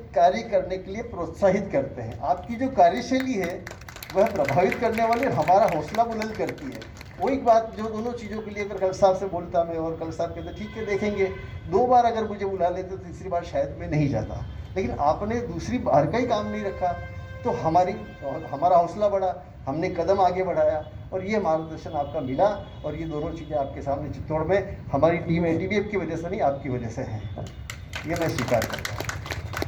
कार्य करने के लिए प्रोत्साहित करते हैं। आपकी जो कार्यशैली है वह प्रभावित करने वाली, हमारा हौसला बुलंद करती है। वही बात जो दोनों चीज़ों के लिए अगर कलेक्टर साहब से बोलता मैं, और कलेक्टर साहब कहते ठीक है देखेंगे, 2 बार अगर मुझे बुला लेते तो तीसरी बार शायद मैं नहीं जाता, लेकिन आपने दूसरी बार का ही काम नहीं रखा, तो हमारा हौसला बढ़ा, हमने कदम आगे बढ़ाया, और ये मार्गदर्शन आपका मिला। और ये दोनों चीज़ें आपके सामने चित्तौड़ में हमारी टीम एटीबीएफ की वजह से नहीं, आपकी वजह से है, ये मैं स्वीकार करता हूँ।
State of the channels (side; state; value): both; identical; correlation 1.00